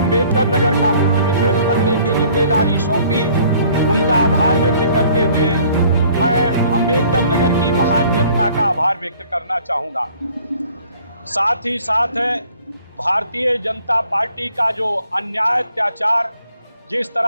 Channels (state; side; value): inverted; both; correlation -0.56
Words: नगर का प्रतिनिधित्व करने की जिम्मेदारी सौंपी, उनका आभार व्यक्त करते हुए मैं अम्बेडकर नगर की महान जनता का आभार व्यक्त करना चाहूँगा। साथ ही साथ भारतीय जनता पार्टी का जो अन्याय, अत्याचार, जिस